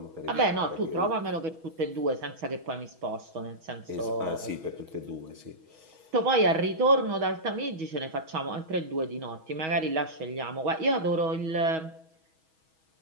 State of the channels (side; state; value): left; late; 6.2 ms